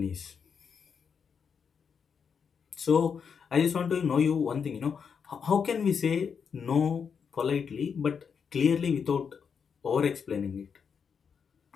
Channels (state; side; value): quieter; right; 6.5 dB